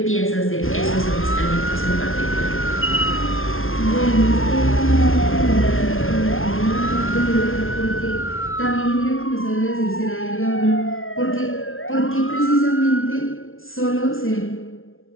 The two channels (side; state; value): right; late; 0.60 ms